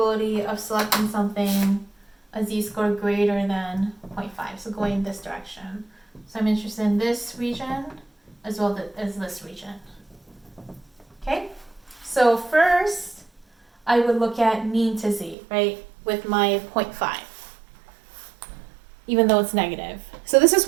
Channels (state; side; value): drops out; left; at 15.4 s